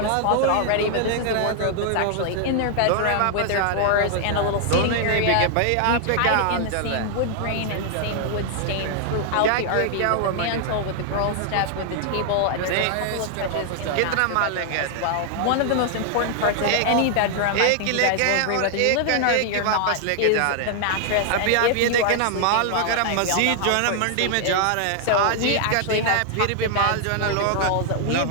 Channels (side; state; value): both; different; correlation 0.00